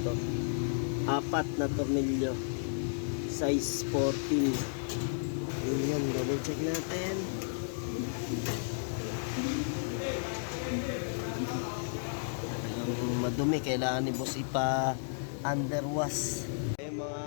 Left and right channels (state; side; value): silent; right; digital silence